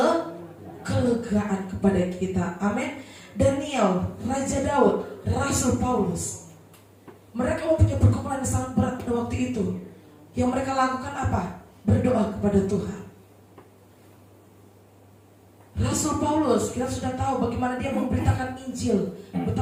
Kelegaan kepada kita. Amin. Daniel, Raja Daud, Rasul Paulus, mereka mempunyai pergumulan yang sangat berat pada waktu itu. Yang mereka lakukan apa? Berdoa kepada Tuhan. Rasul Paulus, kita sudah tahu bagaimana dia memberitakan Injil,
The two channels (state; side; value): identical; both; correlation 1.00